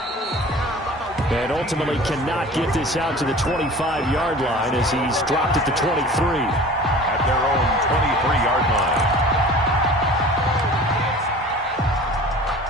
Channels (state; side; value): normal; both; correlation 0.42